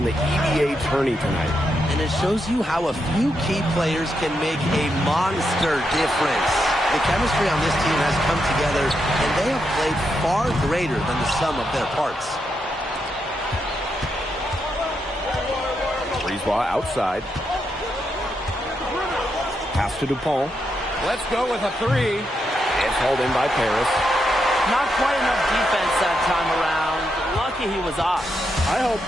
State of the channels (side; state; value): both; normal; correlation 0.82